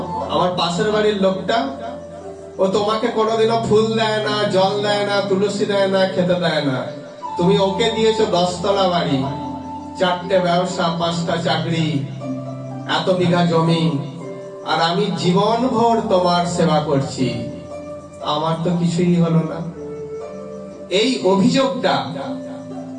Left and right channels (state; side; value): identical; both; correlation 1.00